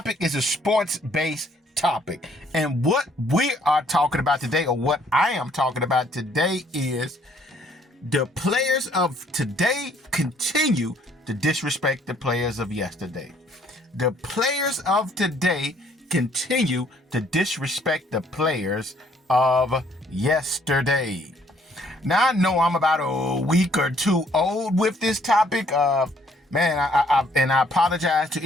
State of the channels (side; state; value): both; normal; correlation 0.63